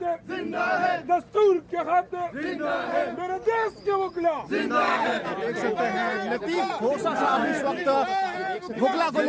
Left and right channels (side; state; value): both; identical; correlation 1.00